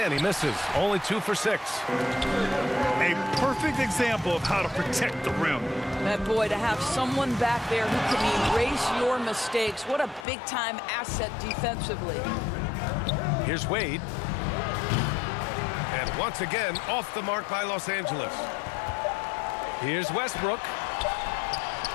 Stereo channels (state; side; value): drops out; right; at 10.2 s